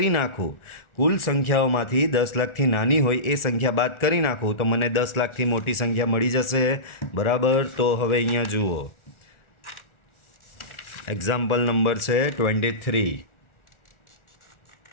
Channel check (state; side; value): late; right; 1.4 ms